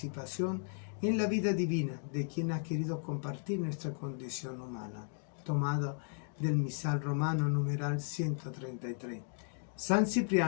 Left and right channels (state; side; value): silent; right; 54 dB below the other